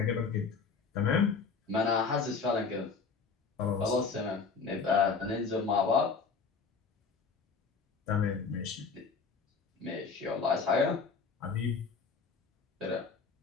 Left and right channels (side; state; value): right; quieter; 5.1 dB